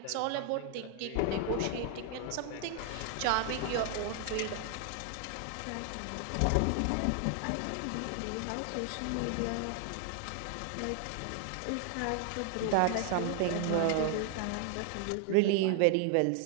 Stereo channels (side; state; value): both; different; correlation 0.00